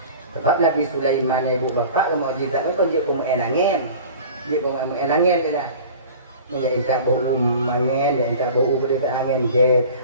Sebab Nabi Sulaiman ibu bapa mukjizat itu dia pun angin. Dia pun angin dia lah. Ya inta bau angin, ya inta bau berita angin jet,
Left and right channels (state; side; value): inverted; both; correlation -0.41